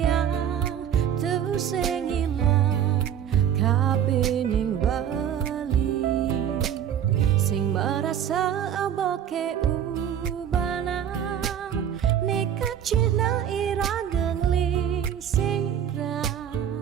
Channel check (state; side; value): quieter; left; 9.4 dB